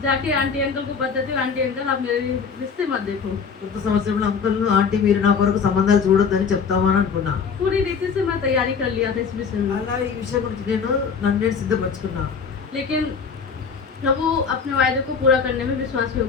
जाके आंटी अंकल को बताती हूँ, आंटी अंकल आप मेरे रिश्ते मत देखो। కొత్త సంవత్సరంలో అంకుల్ ఆంటీ మీరు నా కొరకు సంబంధాలు చూడొద్దని చెప్తామని అనుకున్నా. पूरी रीति से मैं तैयारी कर लिया था इस विषय में। అలా ఈ విషయం గురించి నన్ను నేను సిద్ధపరచుకున్నా. लेकिन प्रभु अपने वायदे को पूरा करने में विश्वास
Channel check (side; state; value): right; quieter; 5.9 dB